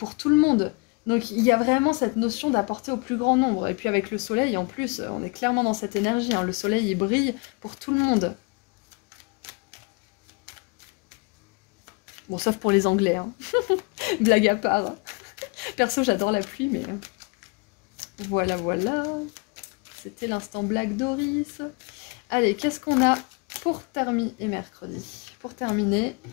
tout le monde. Donc il y a vraiment cette notion d'apporter au plus grand nombre. Et puis avec le soleil, en plus, on est clairement dans cette énergie, hein. Le soleil, il brille pour tout le monde. Bon, sauf pour les Anglais, hein. Blague à part. Perso, j'adore la pluie, mais... Voilà, voilà. C'était l'instant blague Doris. Allez, qu'est-ce qu'on a pour terminer et mercredi? Pour terminer,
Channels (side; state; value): right; quieter; 30.8 dB